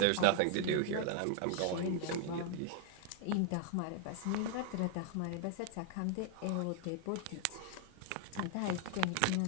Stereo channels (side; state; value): both; different; correlation 0.00